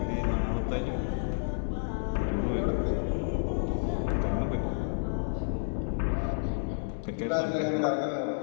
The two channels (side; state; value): right; silent; digital silence